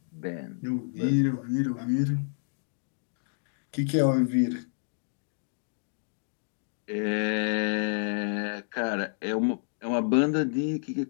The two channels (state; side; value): silent; right; digital silence